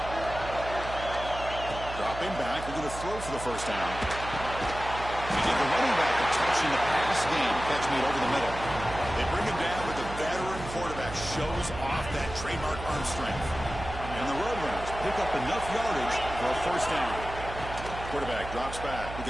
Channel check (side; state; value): right; noise; hum, 10 dB below the sound